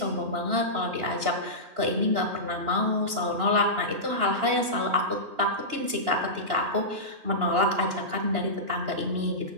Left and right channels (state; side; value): late; left; 2.9 ms